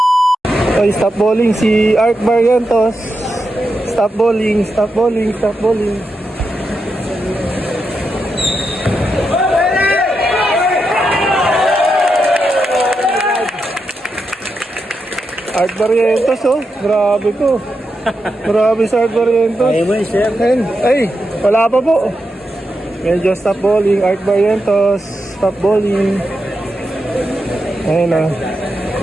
Okay, stop bowling si Art Barrientos. Stop bowling, stop bowling, stop bowling. Art Barrientos oh, grabe ko. Grabe si Art Barrientos. Ay, wala pa po. Medyo stop bowling, Art Barrientos, stop bowling. Ayun na.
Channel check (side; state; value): both; normal; correlation 0.86